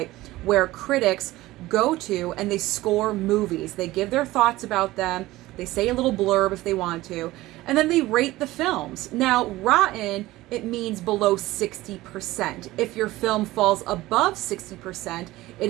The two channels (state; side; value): quieter; left; 17.7 dB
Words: where critics go to and they score movies. They give their thoughts about them, they say a little blurb if they want to, and then they rate the films. Now, rotten, it means below 60%. If your film falls above 60%,